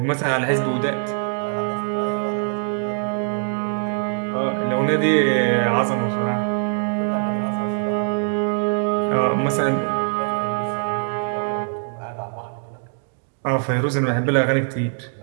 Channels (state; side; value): silent; left; digital silence